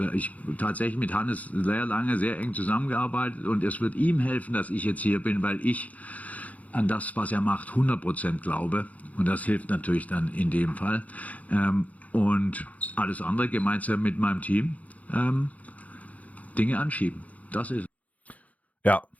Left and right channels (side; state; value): right; late; 0.071 ms